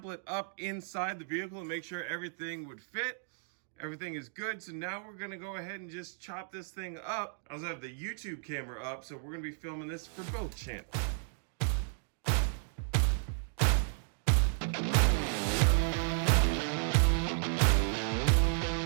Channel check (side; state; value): left; silent; digital silence